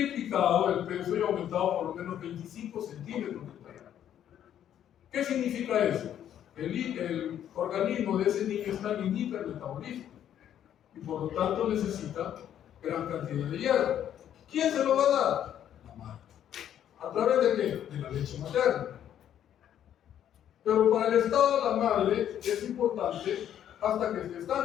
el peso y aumentado por lo menos 25 centímetros de talla. ¿Qué significa eso? El organismo de ese niño está en hipermetabolismo y por lo tanto necesita gran cantidad de hierro. ¿Quién se lo va a dar? La madre. ¿A través de qué? De la leche materna. Pero para el estado de la madre es importante hasta que esté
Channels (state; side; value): quieter; right; 10.3 dB